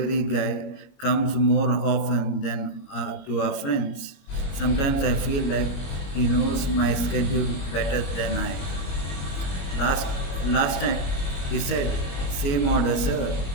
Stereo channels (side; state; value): right; late; 22 ms